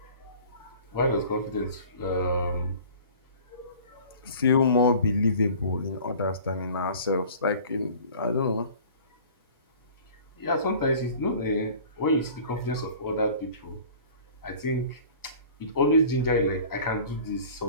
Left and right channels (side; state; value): both; inverted; correlation -0.45